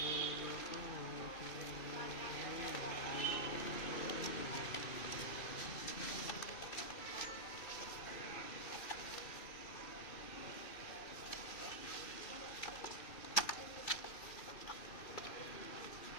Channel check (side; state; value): right; late; 2.5 ms